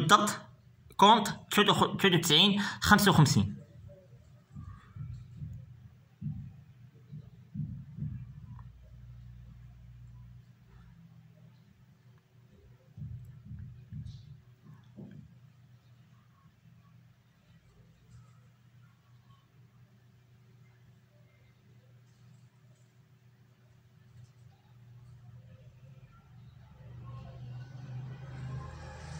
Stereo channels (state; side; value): identical; both; correlation 1.00